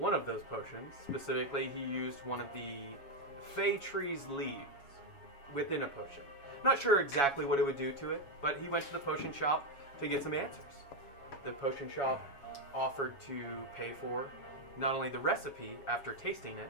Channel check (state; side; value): late; right; 7.2 ms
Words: of those potions, specifically, he used one of the Fey Tree's leaves within a potion. Not sure exactly what it would do to it, but he went to the potion shop to get some answers. The potion shop offered to pay for not only the recipe after tasting it